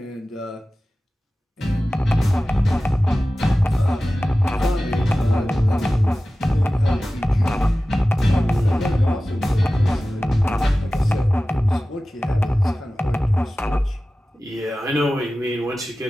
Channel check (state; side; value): normal; both; correlation 0.96